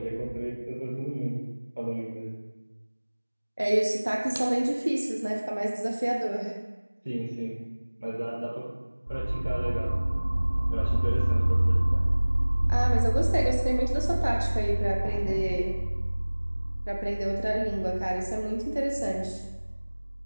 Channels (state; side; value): inverted; both; correlation -1.00